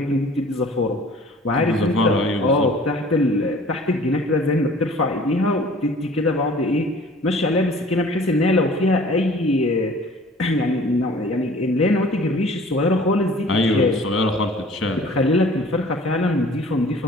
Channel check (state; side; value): normal; both; correlation 0.49